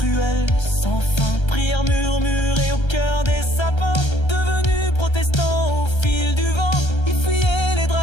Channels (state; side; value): late; right; 1.3 ms